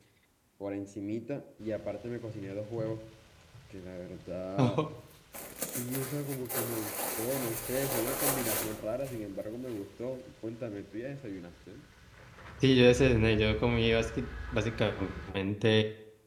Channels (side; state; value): both; identical; correlation 1.00